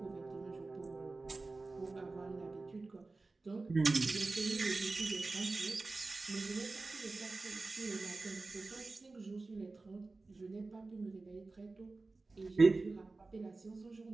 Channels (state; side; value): quieter; left; 3.5 dB